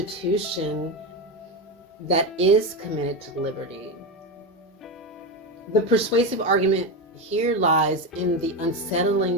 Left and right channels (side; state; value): both; normal; correlation 0.15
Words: that is committed to liberty. The persuasive argument here lies in the